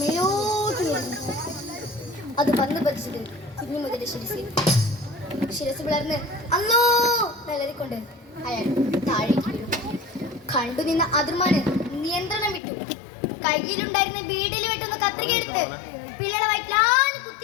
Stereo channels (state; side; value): drops out; right; at 12.6 s